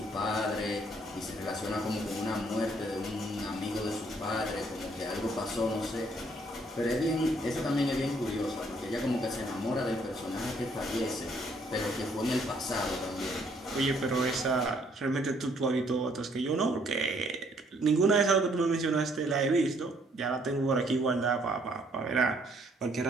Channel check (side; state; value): both; normal; correlation 0.66